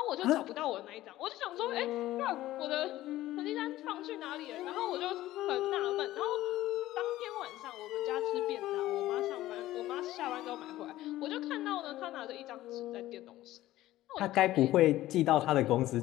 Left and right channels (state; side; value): quieter; right; 15.4 dB